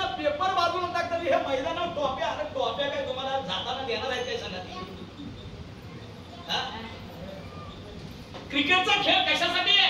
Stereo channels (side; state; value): both; identical; correlation 1.00